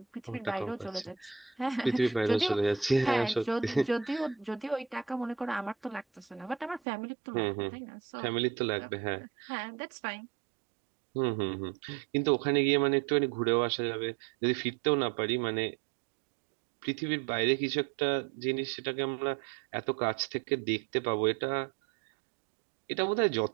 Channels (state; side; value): drops out; left; at 6.8 s